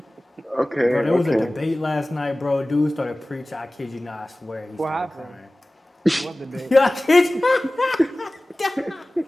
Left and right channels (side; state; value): both; normal; correlation 0.98